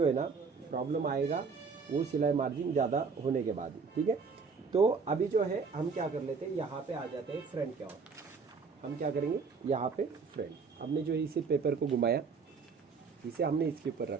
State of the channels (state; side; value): quieter; left; 5.1 dB